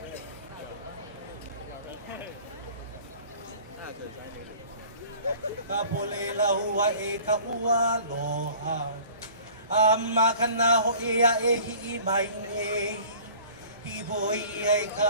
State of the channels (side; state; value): both; inverted; correlation -0.48